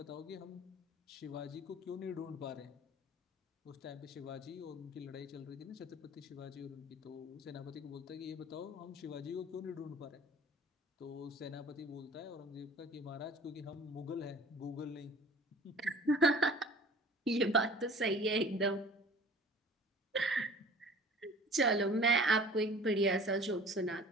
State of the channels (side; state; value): both; normal; correlation 0.46